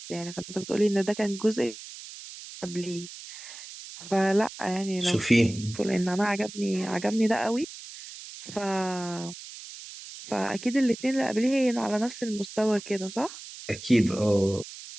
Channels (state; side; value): noise; right; hiss, 14 dB below the sound